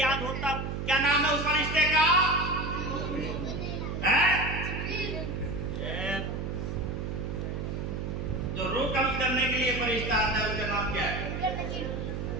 होता। क्या नाम है उस फरिश्ते का? है जो रूह कब्ज करने के लिए फरिश्ता आता है, उसका नाम क्या है?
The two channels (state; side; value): noise; right; hum, 3 dB below the sound